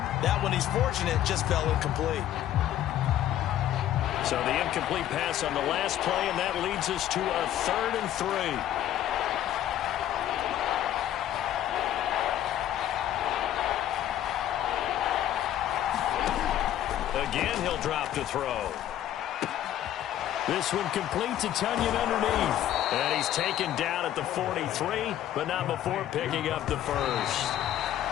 That one, he's fortunate, just fell incomplete. So the incomplete pass on the last play, and that leads us to a 3rd and 3. Again, he'll drop to throw. This one complete to Tunyon underneath. And he's taken down at the 43, but not before picking up the first.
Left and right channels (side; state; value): right; quieter; 12.0 dB